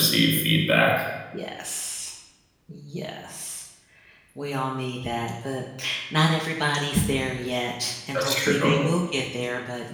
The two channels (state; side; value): identical; both; correlation 1.00